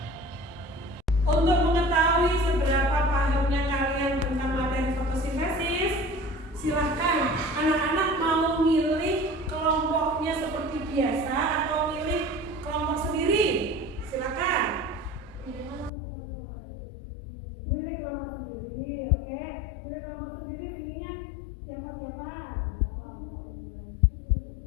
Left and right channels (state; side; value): drops out; right; at 15.9 s